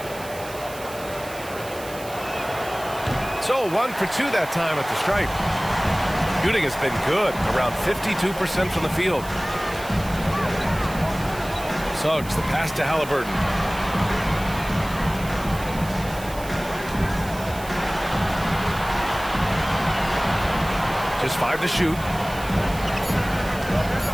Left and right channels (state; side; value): noise; right; hiss, 16 dB below the sound